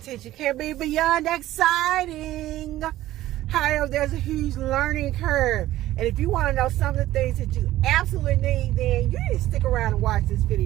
can be beyond exciting. However, there's a huge learning curve. And if you want to know some of the things that you absolutely need, then you need to stick around and watch this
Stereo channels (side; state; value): left; quieter; 14.9 dB